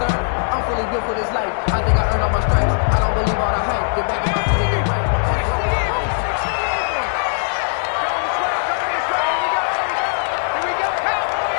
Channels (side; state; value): right; silent; 58 dB below the other